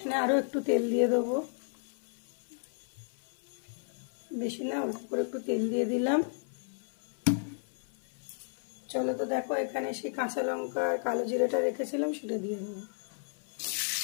আরও একটু তেল দিয়ে দেবো। বেশি না, অল্প করে একটু তেল দিয়ে দিলাম। চলো তো দেখো, এখানে সেই কাঁচা লঙ্কা আর কালো জিরাটা রেখেছিলাম, সেটা দিয়ে দেবো।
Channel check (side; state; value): right; silent; 56 dB below the other